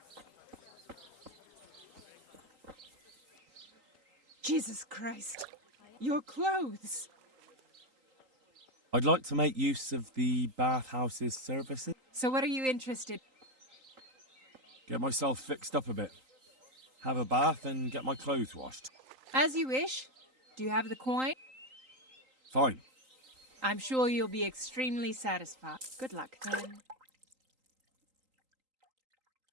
Jesus Christ. Your clothes. I'd like to make use of the bathhouse's services. So what are you interested? Get myself fixed up a bit. Have a bath and get my clothes washed. As you wish. Do you have the coin? Fine. I'm sure you'll be extremely satisfied. Good luck then.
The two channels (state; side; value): late; left; 3.8 ms